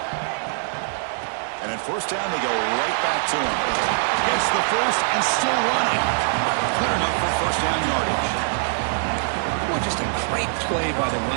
And first down, they go right back to him. Gets the first and still running. Good enough for first down yardage. Well, just a great play by the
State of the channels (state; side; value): silent; left; 63 dB below the other